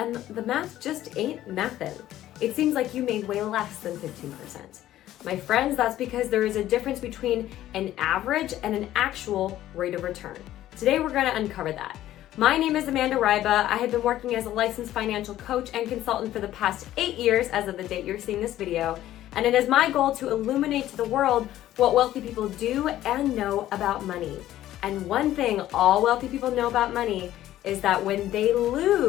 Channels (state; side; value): quieter; right; 13.5 dB